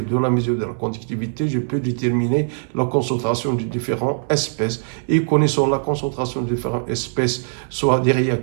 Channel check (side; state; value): left; silent; 64 dB below the other